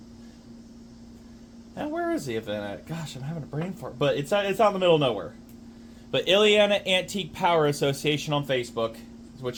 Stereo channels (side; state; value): both; identical; correlation 1.00